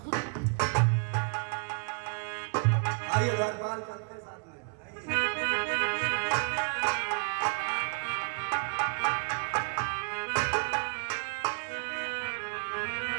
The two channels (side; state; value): left; quieter; 36.2 dB